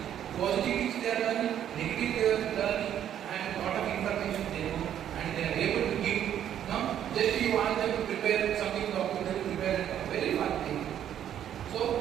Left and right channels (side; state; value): left; quieter; 10.3 dB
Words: Positive things they are learning, negative they are learning, and a lot of information they know, and they are able to give. Just you want them to prepare something, document, they will prepare a very fun thing.